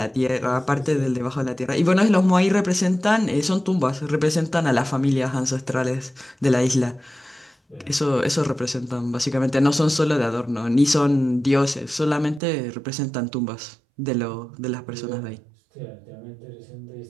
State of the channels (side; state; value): left; drops out; at 12.4 s